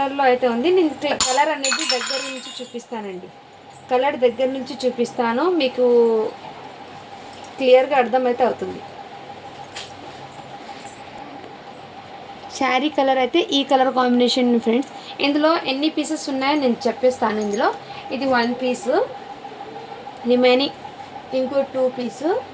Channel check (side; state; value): both; identical; correlation 1.00